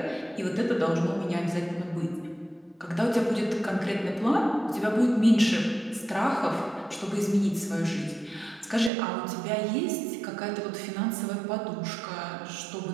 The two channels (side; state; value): left; drops out; at 8.9 s